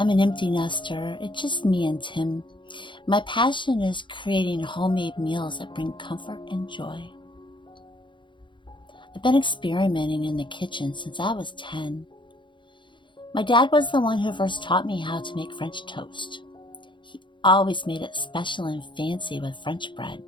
an empty nester. It's just me and Tim. My passion is creating homemade meals that bring comfort and joy. I've been experimenting in the kitchen since I was 10. My dad was the one who first taught me how to make French toast. He always made it special and fancy with French bread.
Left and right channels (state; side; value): late; right; 0.23 ms